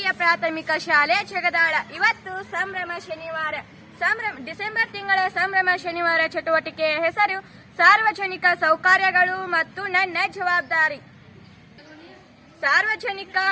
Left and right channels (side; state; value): both; identical; correlation 1.00